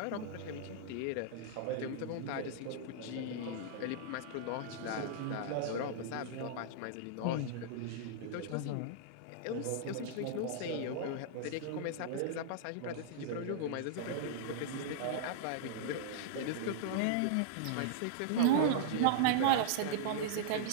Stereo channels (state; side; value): different; both; correlation -0.02